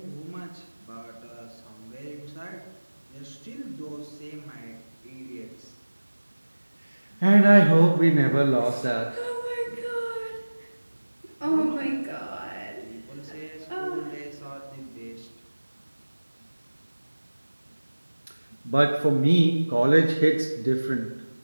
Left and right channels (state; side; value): inverted; both; correlation -1.00